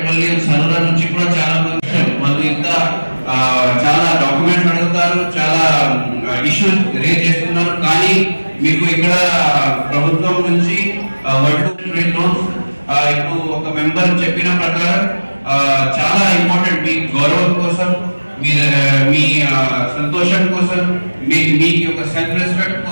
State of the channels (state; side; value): inverted; both; correlation -1.00